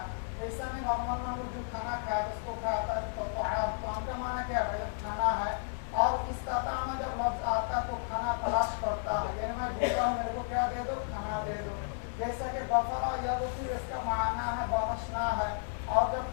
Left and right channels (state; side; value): silent; right; 56 dB below the other